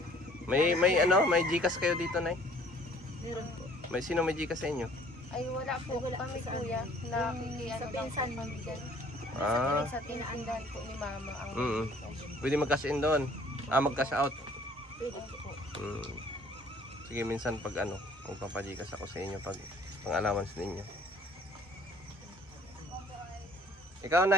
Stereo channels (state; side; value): normal; both; correlation 0.56